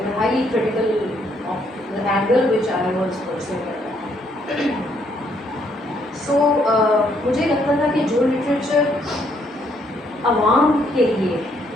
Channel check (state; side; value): normal; both; correlation 0.70